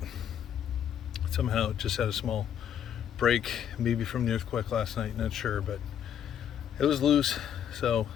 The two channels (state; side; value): quieter; right; 9.4 dB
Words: Somehow it just had a small break, maybe from the earthquake last night, not sure, but it was loose. So